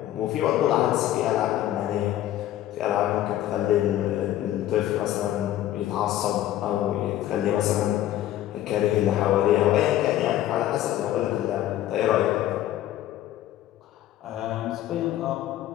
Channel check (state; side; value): quieter; right; 13.2 dB